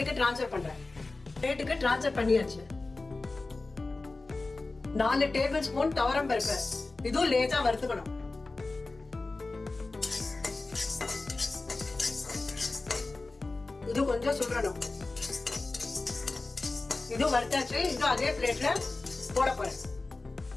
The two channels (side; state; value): right; quieter; 3.4 dB